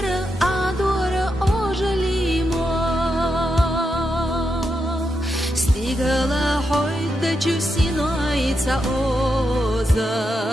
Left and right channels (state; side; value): normal; both; correlation 0.85